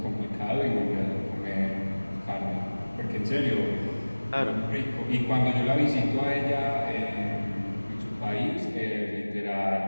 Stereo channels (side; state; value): both; inverted; correlation -1.00